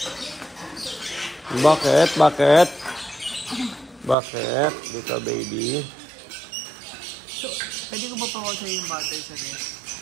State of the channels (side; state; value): left; drops out; at 4.2 s